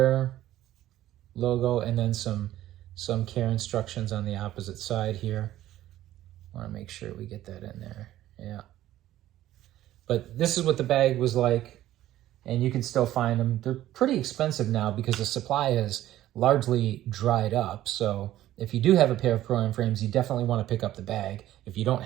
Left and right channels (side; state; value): left; quieter; 13.9 dB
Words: logo and then some some care instructions on the opposite side here. Want to make sure we get that in there. Yeah. But this is what the bag was like, and you can still find them. They're pretty expensive now because the supply has largely dried up. So if you do have a pair of Pro-Am frames, you definitely want to pick up the bag if you don't